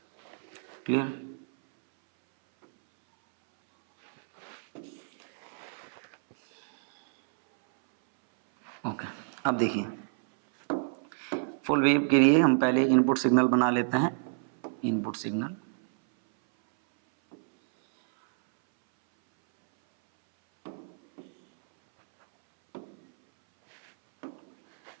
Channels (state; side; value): silent; left; 59 dB below the other